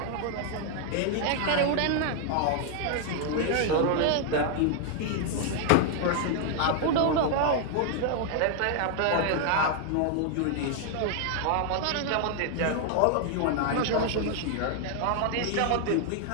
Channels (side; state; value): both; different; correlation 0.00